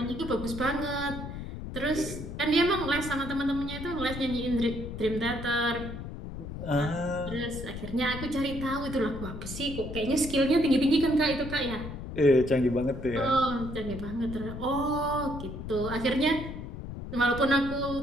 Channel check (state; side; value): noise; left; rumble, 8 dB below the sound